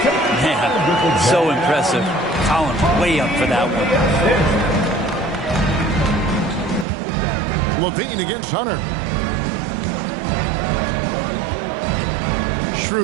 Man, so impressive. Collins way up for that one. Levine against Hunter.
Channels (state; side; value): drops out; left; at 6.9 s